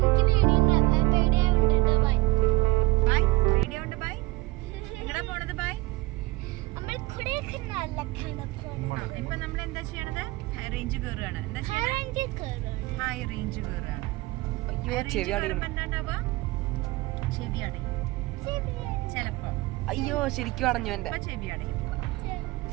ഇപ്പൊ നമ്മൾ എന്താ ചെയ്യണത്? ഹൈ റേഞ്ച് കയറുകയാണ്. ഹൈ റേഞ്ച് കയറുകയാണ്. അയ്യോ ചെവി അടയണം. എന്താണ്ടാവുക? ചെവി അടയും ചെലപ്പോ. അയ്യോ ശരിക്കും അടഞ്ഞു എന്റെ ചെവി അടയും.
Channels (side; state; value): left; quieter; 21.4 dB